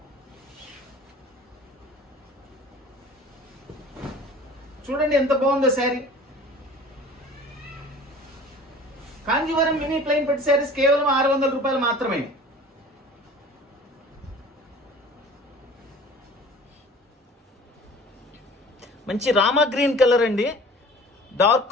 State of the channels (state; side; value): normal; both; correlation 0.44